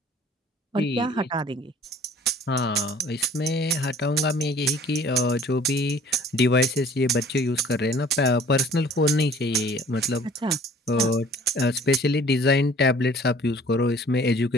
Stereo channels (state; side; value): normal; both; correlation 0.51